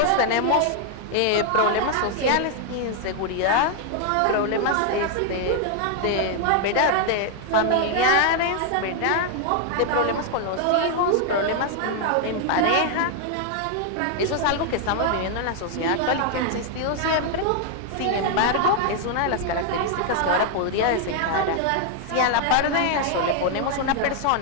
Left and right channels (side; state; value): both; different; correlation 0.00